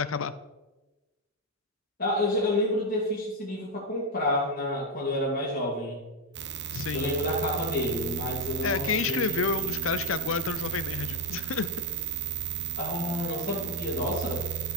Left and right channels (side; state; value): both; normal; correlation 0.05